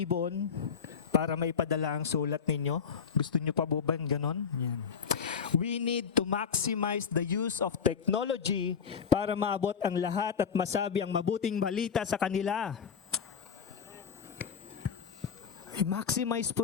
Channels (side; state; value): right; quieter; 6.6 dB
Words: para may padala ang sulat ninyo? Gusto nyo pa ba ganon? Yan. We need to maximize the use of technology para maabot ang lahat at masabi ang mabuting balita sa kanila. I-maximize po